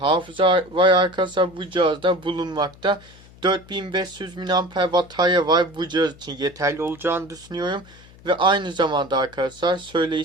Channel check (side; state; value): left; noise; hum, 23 dB below the sound